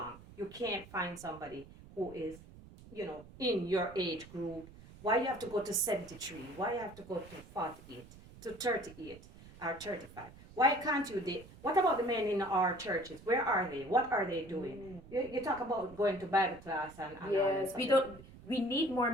you can't find somebody who is, in your age group. Why you have to go to 73? Why you have to go to 48, to 38, or 35? Why can't you date? What about the men in our churches? Where are they? What are they doing? You talk about going to Bible class and all Yes, this. we need more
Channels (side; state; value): right; noise; rumble, 19 dB below the sound